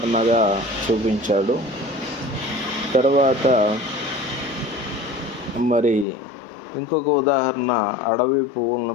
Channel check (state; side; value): drops out; right; at 6.1 s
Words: చూపించాడు. తర్వాత మరి ఇంకొక ఉదాహరణ అడవి